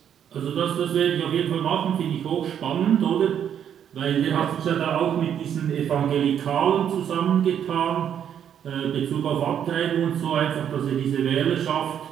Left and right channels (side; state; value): left; quieter; 9.1 dB